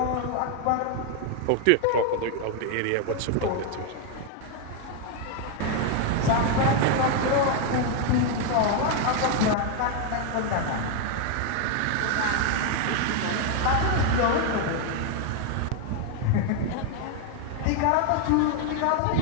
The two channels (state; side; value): different; both; correlation 0.01